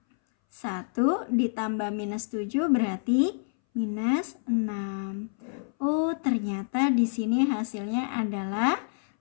1 ditambah minus 7 berarti minus 6. Oh, ternyata di sini hasilnya adalah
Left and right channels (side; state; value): right; silent; 60 dB below the other